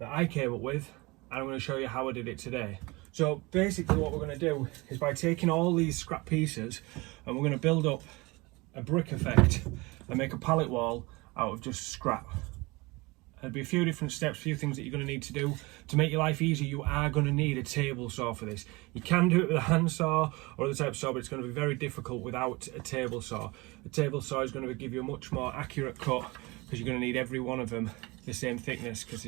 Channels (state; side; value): quieter; left; 24.1 dB